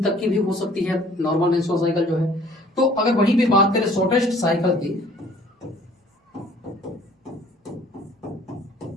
तक की भी हो सकती है नॉर्मल मेंस्ट्रुअल साइकिल जो है। तो अगर वहीं पे बात करें शॉर्टेस्ट साइकिल की,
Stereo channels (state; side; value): normal; both; correlation 0.55